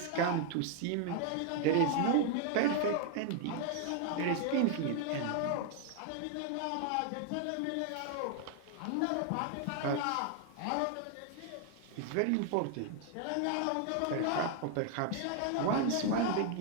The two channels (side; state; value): both; different; correlation 0.00